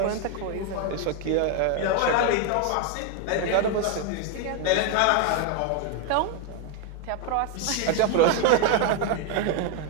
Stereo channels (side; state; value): both; different; correlation 0.01